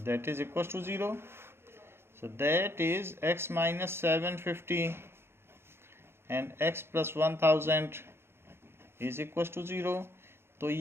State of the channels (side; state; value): left; late; 0.12 ms